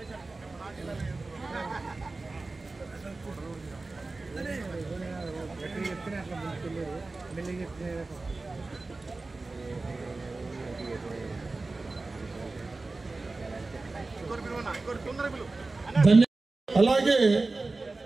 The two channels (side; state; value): left; quieter; 3.4 dB